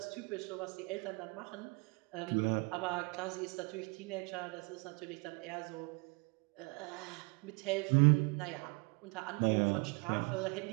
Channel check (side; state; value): left; quieter; 29.9 dB